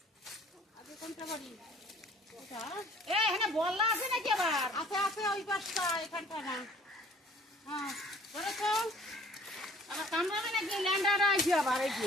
আগে কোনটা বাড়ি? এখানে বললা আছে নাকি আবার? আছে আছে, ওই পাশটা, এখানটা না। হ্যাঁ ধরেছো? আবার কামড়াবে নাকি? ল্যান্ডাটা আছে আবার, এই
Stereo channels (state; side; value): normal; both; correlation 0.54